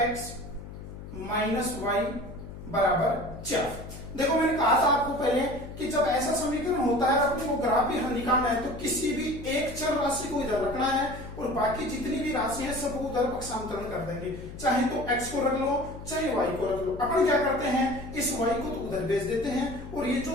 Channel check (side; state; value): left; noise; hum, 12 dB below the sound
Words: - y बराबर 4। देखो, मैंने कहा था आपको पहले कि जब ऐसा समीकरण होता है अपने को ग्राफी हल निकालना है तो किसी भी एक चर राशि को इधर रखना है और बाकी जितनी भी राशि है सबको उधर पक्षांतरण कर देंगे। चाहे तो x को रख लो, चाहे y को रख लो। अपन क्या करते हैं, इस y को तो उधर भेज देते हैं और ये